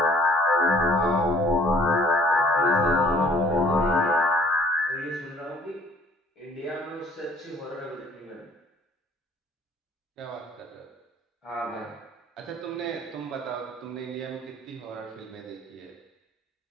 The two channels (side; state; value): both; normal; correlation 0.56